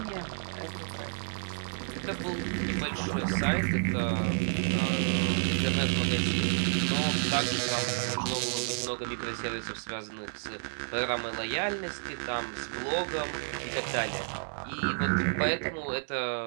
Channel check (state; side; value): silent; left; 57 dB below the other